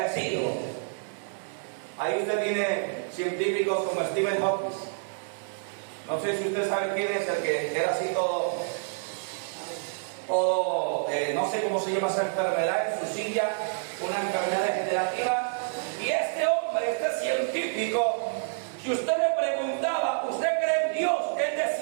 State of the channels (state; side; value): silent; left; digital silence